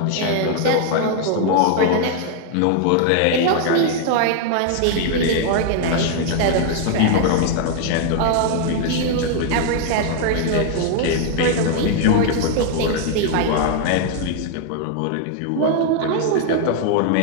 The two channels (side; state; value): both; different; correlation 0.00